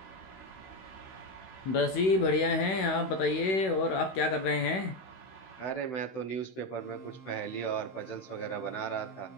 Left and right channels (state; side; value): late; right; 16 ms